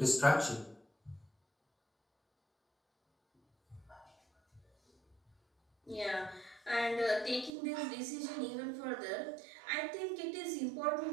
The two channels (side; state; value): left; drops out; at 7.5 s